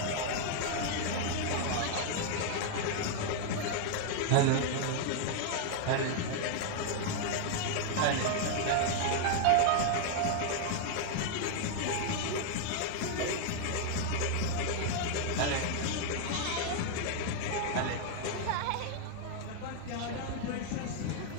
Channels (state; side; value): different; both; correlation 0.00